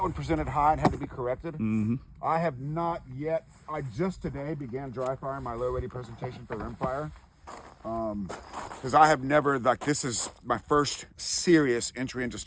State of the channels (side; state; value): both; identical; correlation 1.00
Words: one presented high and had to be corrected. Mm-hmm. I have not yet. I just today began dry firing my low ready presentation for rimfire. Because I have never, this is my first serious entry into